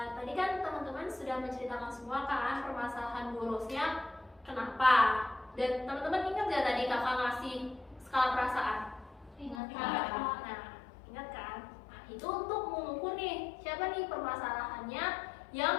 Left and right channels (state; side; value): drops out; right; at 9.6 s